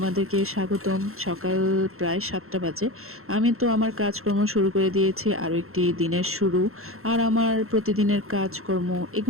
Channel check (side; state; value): left; late; 0.62 ms